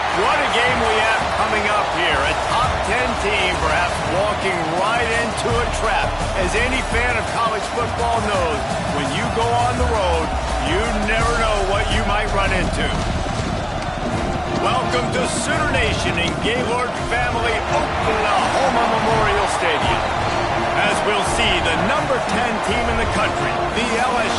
What a game we have coming up here. A top 10 team perhaps walking right into a trap. As any fan of college football knows, when you go on the road, you never know what you might run into. Welcome to Sooner Nation in Gaylord Family Oklahoma Memorial Stadium. As we'll see the number 10 team in the country, the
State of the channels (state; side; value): identical; both; correlation 1.00